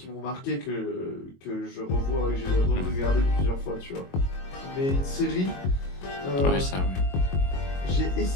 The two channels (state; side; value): late; right; 22 ms